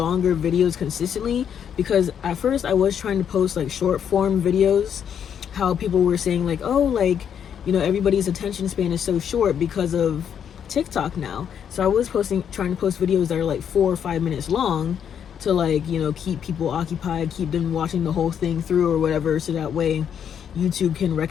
videos consistently, because at first I was trying to post like short form videos, how people were saying like, oh, like, you know, everybody's attention span is so short because of TikTok now. So I was trying to post videos that are like 4 or 5 minutes long to like, you know, keep people occupied, keep them watching the whole thing through or whatever, so that way YouTube can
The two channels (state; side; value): quieter; right; 8.4 dB